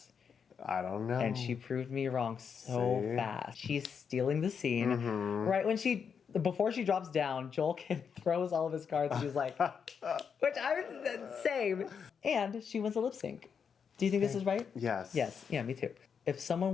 I don't know. And she proved me wrong so fast. She's stealing the scene. Right when before she drops down, Joel Kim throws all of his cards. She's like, which I was same. And she wins a lip sync. Do you think this is right? Yes. Yes. Yeah, me too. If someone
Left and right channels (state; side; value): quieter; right; 6.7 dB